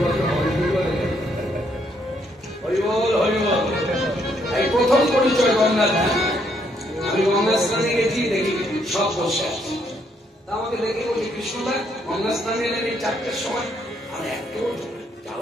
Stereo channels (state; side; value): normal; both; correlation 0.72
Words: এই প্রথম পরিচয় গঙ্গা। আমি গঙ্গা স্নানে গেছি, দেখি সব বসে আছে। তা আমাকে দেখে বলি, কৃষ্ণদা গঙ্গা স্নানে এলেন এই 4টার সময়? আমি এত